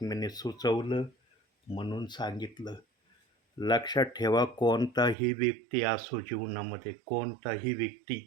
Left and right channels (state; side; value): drops out; left; at 5.2 s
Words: सुचवलं म्हणून सांगितलं. लक्षात ठेवा, कोणताही व्यक्ती असो जीवनामध्ये, कोणताही